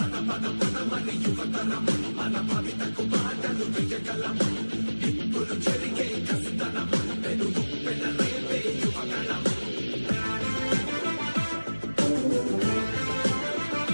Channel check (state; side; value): inverted; both; correlation -1.00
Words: పదమని యువతరం మన భవితకు బాటలు వేయగలం. నిప్పులు చెరిగే కసితనం పెనుగు పెనరేపే యువగణం.